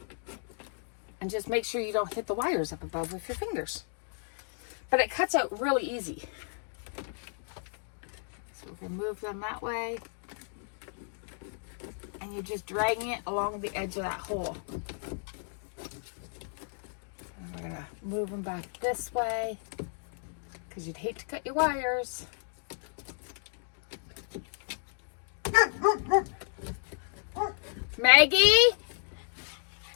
And just make sure you don't hit the wires up above with your fingers. But it cuts out really easy. So we're going to move them that way. And you're just dragging it along the edge of that hole. And we're going to move them back this way, because you'd hate to cut your wires. Maggie?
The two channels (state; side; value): silent; right; 56 dB below the other